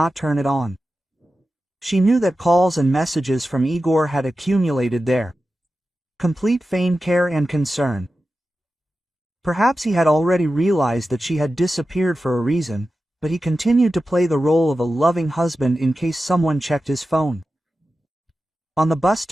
turn it on. She knew that calls and messages from Igor had accumulated there. Complete feigned care and concern. Perhaps he had already realized that she had disappeared for a reason, but he continued to play the role of a loving husband in case someone checked his phone. On the bus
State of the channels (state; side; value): normal; both; correlation 0.93